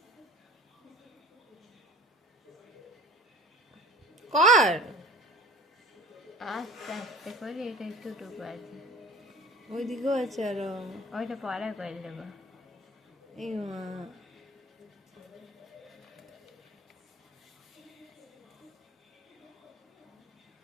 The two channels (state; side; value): normal; both; correlation 0.44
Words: কর। আস্তে আস্তে করে এটা একটুটুকু আছে, ওইদিকেও আছে আরো। ওইটা পরে করে দেবো। এই মা,